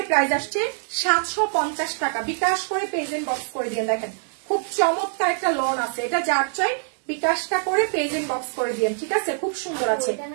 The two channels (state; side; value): silent; left; digital silence